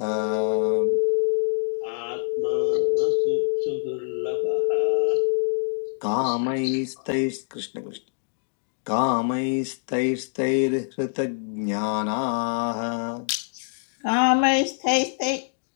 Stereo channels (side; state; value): right; silent; digital silence